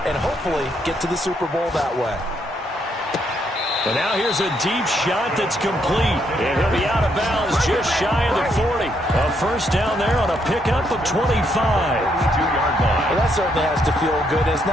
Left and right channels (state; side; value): normal; both; correlation 0.74